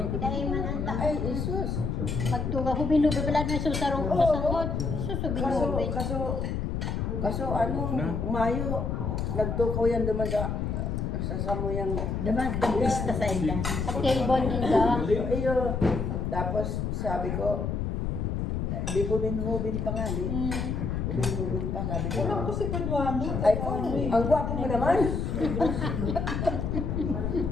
Dahil man ang tao. Ay, Isus. Pagtuga, hubin-hubin pala na susarong kasangod. Susubin-hubin. Kaso ano, Mayo, nagtukaw yan naman sa samoyang... Diba, tagista sa ila. At kay Bon din ka. Iyo, tapos sabi ko, di hubin-hubin pa nga, di. Hubin-hubin pa, sabi ko. Alam ko si Paduano. Ay, ang gwapo mo naman.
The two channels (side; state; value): left; noise; rumble, 1 dB below the sound